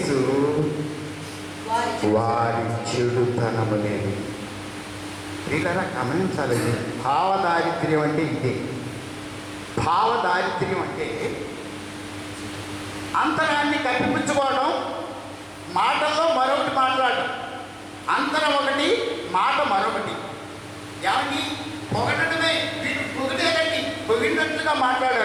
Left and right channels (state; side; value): identical; both; correlation 1.00